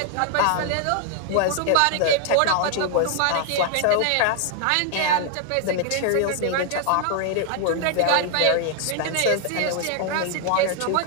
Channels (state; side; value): different; both; correlation 0.00